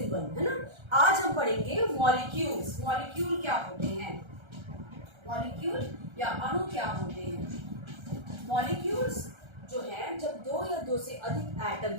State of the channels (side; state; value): left; late; 1.3 ms